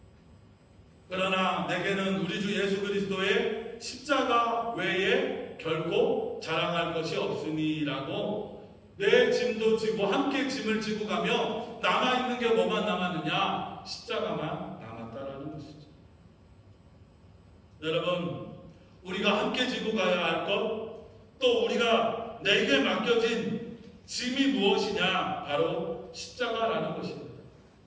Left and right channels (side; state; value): both; identical; correlation 1.00